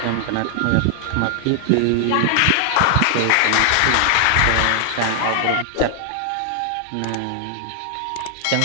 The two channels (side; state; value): both; different; correlation 0.00